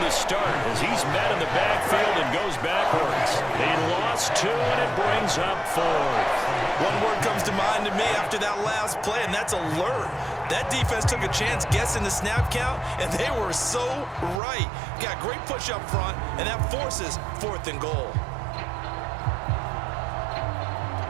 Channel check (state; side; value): drops out; left; at 14.4 s